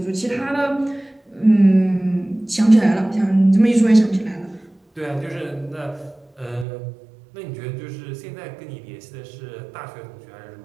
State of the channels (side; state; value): left; drops out; at 6.7 s